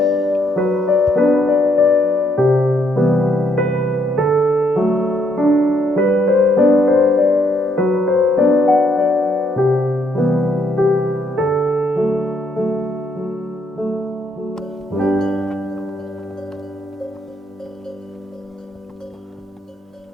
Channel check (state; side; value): normal; both; correlation 0.73